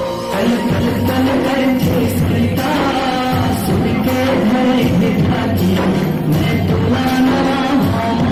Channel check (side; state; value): both; identical; correlation 1.00